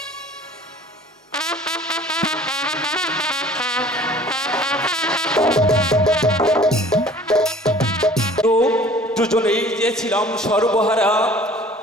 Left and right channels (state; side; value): normal; both; correlation 0.49